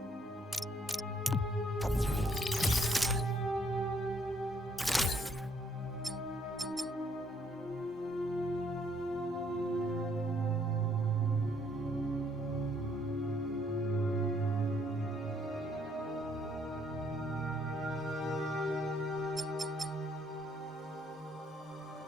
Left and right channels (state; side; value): normal; both; correlation 0.67